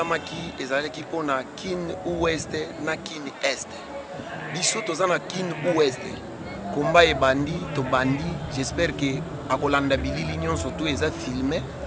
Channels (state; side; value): identical; both; correlation 1.00